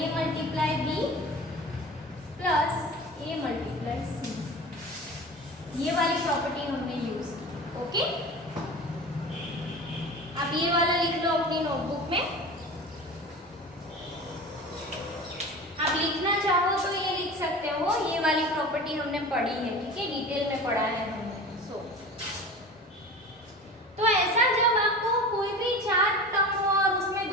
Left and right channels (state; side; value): normal; both; correlation 0.35